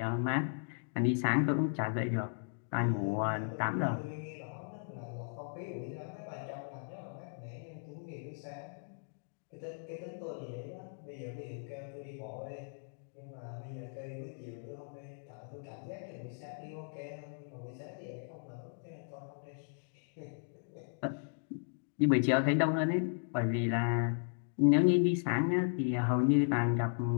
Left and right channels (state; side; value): silent; right; digital silence